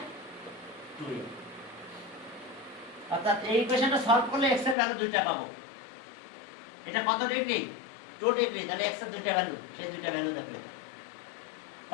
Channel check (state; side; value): drops out; right; at 4.8 s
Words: 2a। অর্থাৎ এই ইকুয়েশনটা সলভ করলে x এর ভ্যালু দুইটা পাবো। এটা কত ডিগ্রি? 2 ডিগ্রি। তাহলে x এর দুইটা ভ্যালু, সেই দুইটা ভ্যালু দেখো। এটা